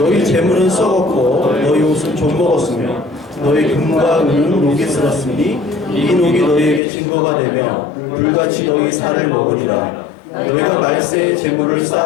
재물은 썩었고 너희 옷은 좀 먹었으며 너희 금과 은은 녹이 슬었으니 이 녹이 너희에게 증거가 되며 불같이 너희 살을 먹으리라. 너희가 말세의 재물을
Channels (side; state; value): right; drops out; at 6.8 s